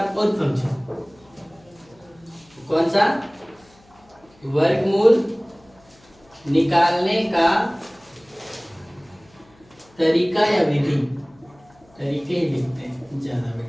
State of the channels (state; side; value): noise; left; hum, 30 dB below the sound